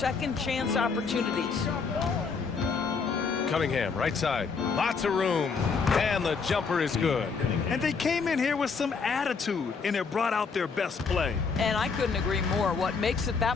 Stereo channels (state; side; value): quieter; right; 5.2 dB